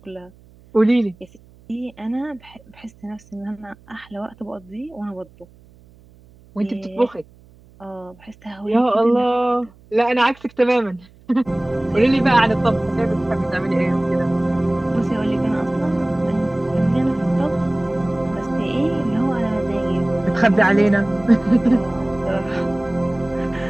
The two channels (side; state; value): right; noise; hum, 26 dB below the sound